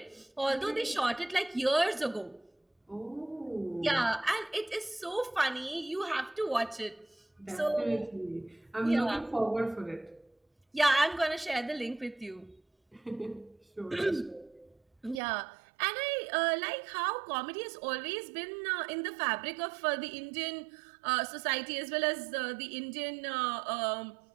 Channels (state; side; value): drops out; left; at 15.2 s